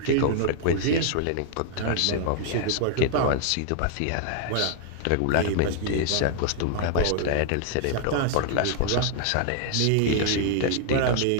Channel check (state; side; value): different; both; correlation -0.01